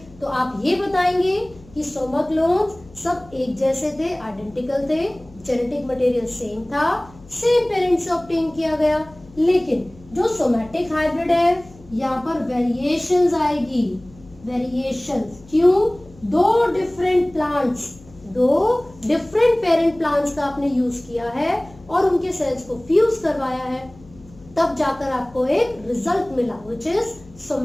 तो आप ये बताएंगे कि सोमा क्लोन्स सब एक जैसे थे, आइडेंटिकल थे, जेनेटिक मटेरियल सेम था, सेम पेरेंट से ऑब्टेन किया गया। लेकिन जो सोमैटिक हाइब्रिड है, यहाँ पर वेरिएशंस आएगी, वेरिएशंस। क्यों, 2 डिफरेंट पेरेंट प्लांट्स का आपने यूज किया है और उनके सेल्स को फ्यूज करवाया है, तब जाकर आपको एक रिजल्ट मिला व्हिच इज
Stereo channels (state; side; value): noise; left; hum, 23 dB below the sound